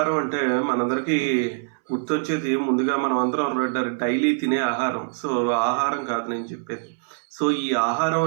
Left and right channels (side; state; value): left; silent; 63 dB below the other